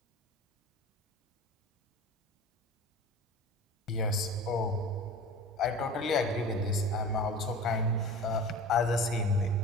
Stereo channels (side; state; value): both; normal; correlation 0.37